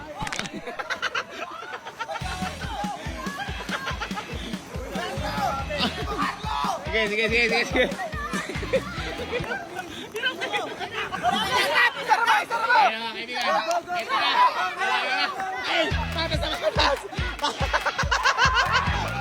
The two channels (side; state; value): both; identical; correlation 1.00